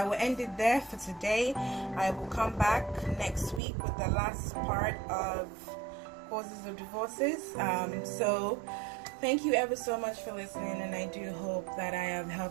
will end it there for today. I will come back next week with the last part of causes of divorces. So thank you ever so much for listening, and I do hope that I have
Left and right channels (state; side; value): drops out; left; at 3.6 s